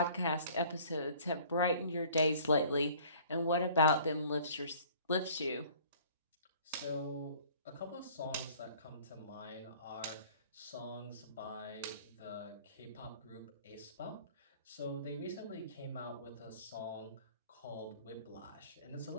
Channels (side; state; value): both; inverted; correlation -0.52